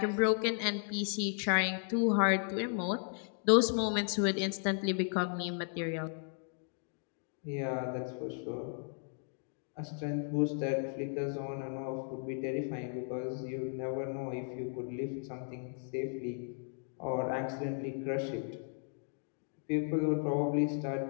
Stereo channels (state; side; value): silent; right; 54 dB below the other